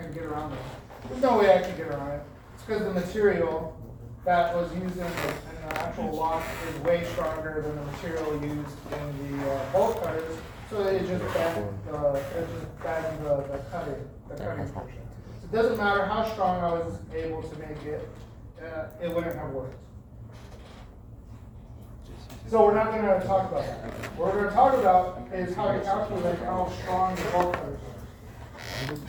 get around it? There's no way I can get around it. It's because the material that was used in the actual lock is way stronger than the material used in the bolt cutters. So it just bends the cutting portion. So it doesn't matter how strong I was able to make it, it wouldn't have worked. So we're not going to talk about that. What we're going to talk about is how to calculate how strong the bolt cutters are.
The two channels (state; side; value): identical; both; correlation 1.00